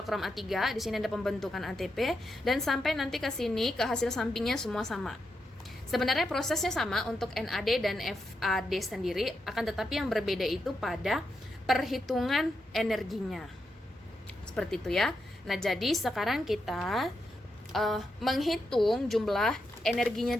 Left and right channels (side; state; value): both; normal; correlation 0.85